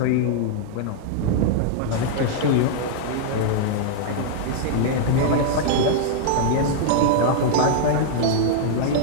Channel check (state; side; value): different; both; correlation -0.01